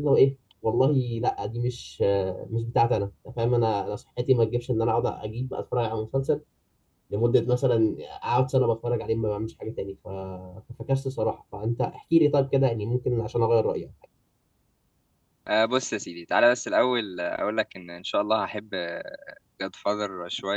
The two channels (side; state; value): both; identical; correlation 1.00